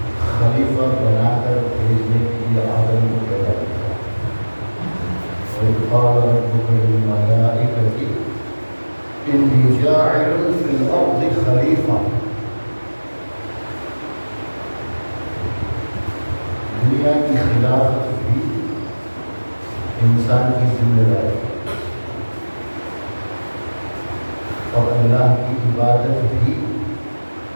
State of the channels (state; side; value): inverted; both; correlation -1.00